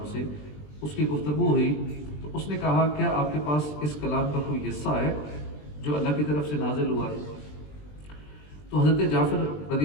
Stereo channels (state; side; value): late; right; 20 ms